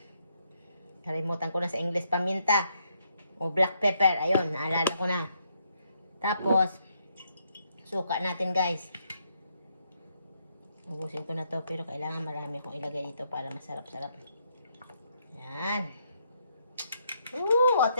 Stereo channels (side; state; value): both; inverted; correlation -0.75